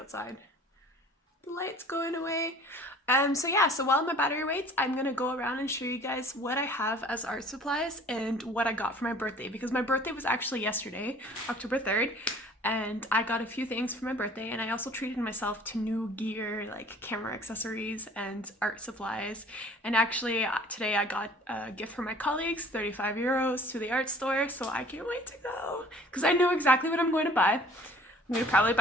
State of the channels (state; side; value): normal; both; correlation 0.51